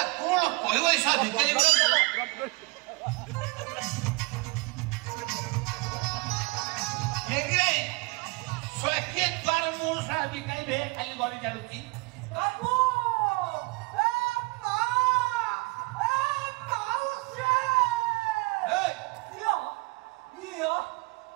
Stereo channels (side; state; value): left; quieter; 27.0 dB